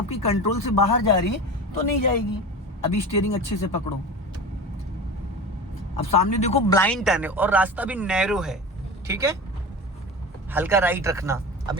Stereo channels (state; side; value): normal; both; correlation 0.30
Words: कंट्रोल से बाहर जा रही है तो नहीं जाएगी। अभी स्टीयरिंग अच्छे से पकड़ो। अब सामने देखो ब्लाइंड टर्न है और रास्ता भी नैरो है, ठीक है। हल्का राइट रखना। अब